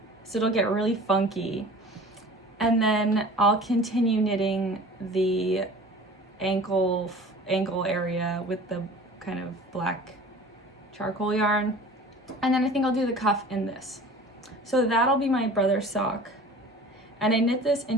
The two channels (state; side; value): normal; both; correlation 0.43